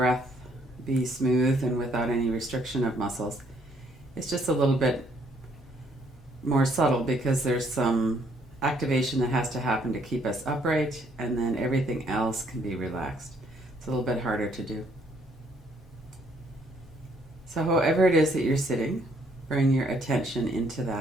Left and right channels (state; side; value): normal; both; correlation 0.67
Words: be smooth and without any restriction of muscles. It's just a little bit more subtle because there's some activation that has to happen to keep us upright, and then everything else can be relaxed. It's a little bit harder to do. So however it is that you're sitting, bring your attention into